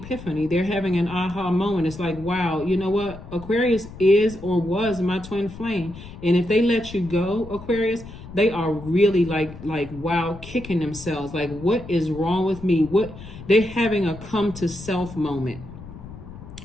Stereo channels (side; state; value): left; noise; rumble, 15 dB below the sound